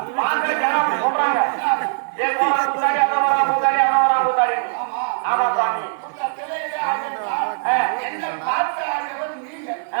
சொல்றாங்க ஆமா சாமி,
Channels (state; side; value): silent; left; 65 dB below the other